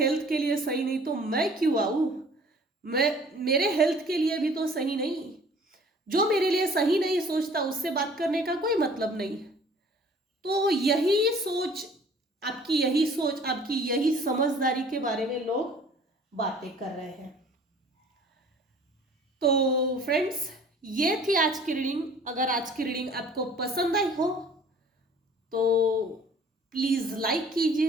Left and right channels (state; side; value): normal; both; correlation 0.52